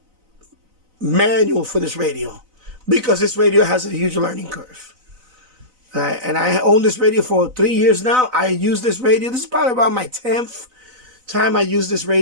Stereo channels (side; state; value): left; late; 4.0 ms